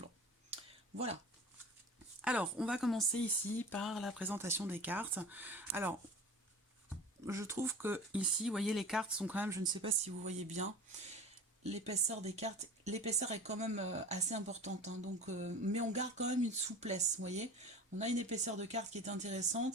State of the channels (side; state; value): both; normal; correlation 0.36